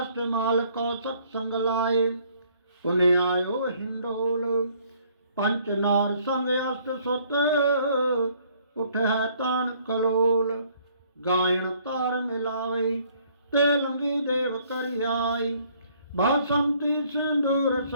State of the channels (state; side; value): inverted; both; correlation -0.62